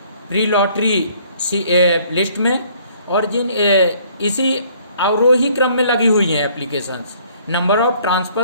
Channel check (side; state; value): both; inverted; correlation -0.60